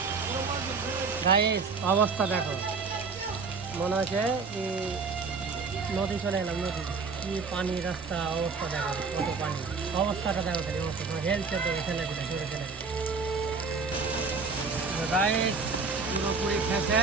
গাইস অবস্থা দেখো, মনে হচ্ছে কি নদী চলে এলাম। নদী কি পানি, রাস্তা অবস্থা দেখো, কত পানি, অবস্থাটা দেখো, খালি অবস্থা তোমার হেলছে তো ছেলে দিলে জোরে ছেলে দিলে। গাইস পুরোপুরি খেয়েছে,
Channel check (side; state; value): left; quieter; 4.7 dB